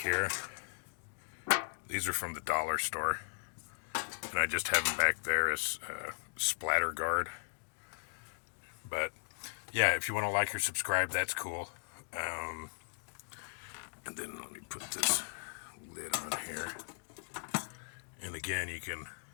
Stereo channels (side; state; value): right; silent; digital silence